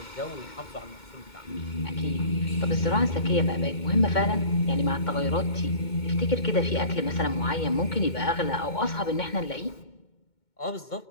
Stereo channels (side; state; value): right; late; 2.2 ms